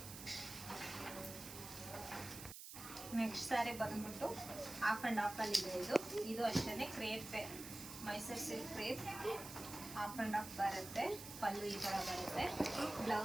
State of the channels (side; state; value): right; noise; hiss, 11 dB below the sound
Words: ನೆಕ್ಸ್ಟ್ ಸ್ಯಾರಿ ಬಂದ್ಬಿಟ್ಟು ಹಾಫ್ ಆ್ಯಂಡ್ ಹಾಫಲ್ಲಿ ಇದೆ. ಇದು ಅಷ್ಟೇ crepe, Mysuru silk crepe half and half ಬರುತ್ತೆ. ಪಲ್ಲು ಈ ಥರ ಬರುತ್ತೆ.